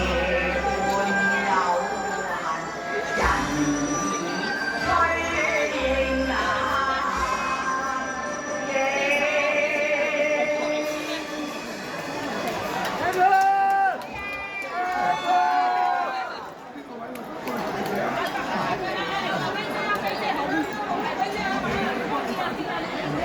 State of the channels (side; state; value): both; identical; correlation 1.00